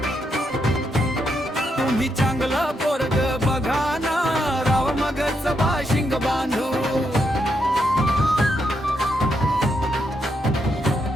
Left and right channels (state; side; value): normal; both; correlation 0.80